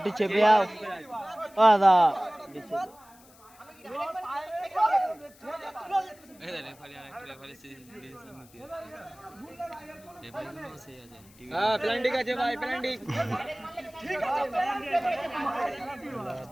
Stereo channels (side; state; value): left; noise; hiss, 26 dB below the sound